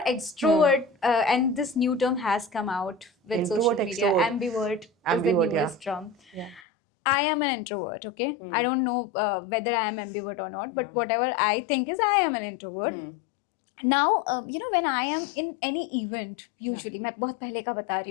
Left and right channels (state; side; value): drops out; right; at 6.6 s